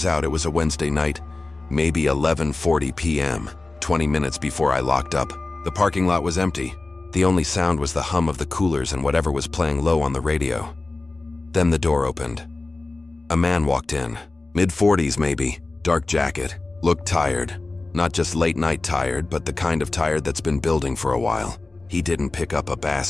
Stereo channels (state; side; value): quieter; right; 3.3 dB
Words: out. It was a Wednesday night, maybe 11:40 p.m., 20 minutes before I locked up. The parking lot was empty. The only sound was the hum of the coolers and whatever was playing low on the radio. Then the door opened. A man walked in, mid-40s maybe, dark jacket, looked tired. Not just late night tired, but the kind of tired that's been building for a while. He didn't pick up a